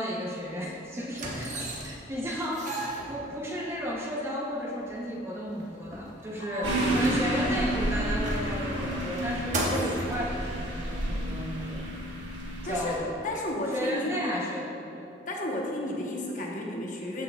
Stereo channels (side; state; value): both; normal; correlation 0.50